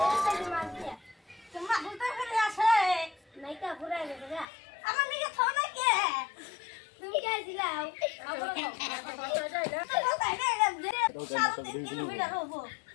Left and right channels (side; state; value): right; drops out; at 4.5 s